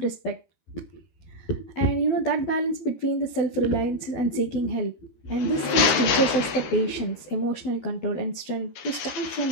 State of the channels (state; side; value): late; right; 13 ms